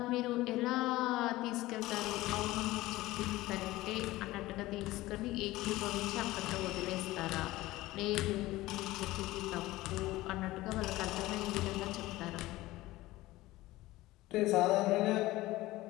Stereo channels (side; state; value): right; quieter; 18.0 dB